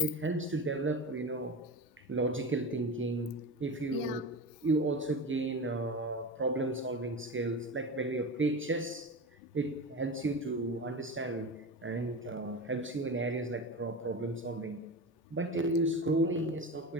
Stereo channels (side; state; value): both; normal; correlation 0.26